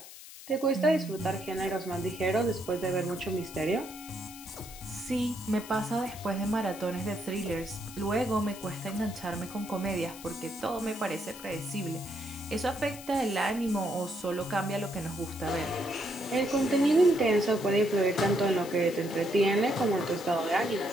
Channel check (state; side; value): noise; left; hiss, 15 dB below the sound